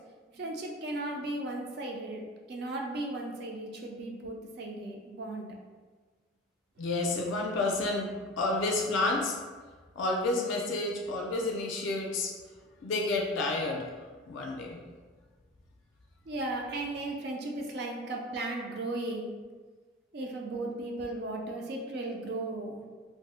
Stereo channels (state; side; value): normal; both; correlation 0.31